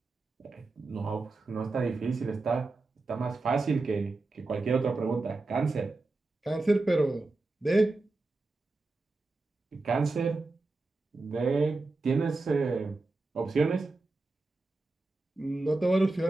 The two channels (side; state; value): left; quieter; 3.3 dB